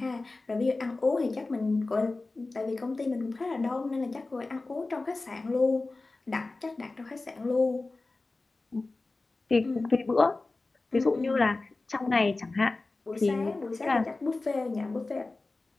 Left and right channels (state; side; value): quieter; right; 3.4 dB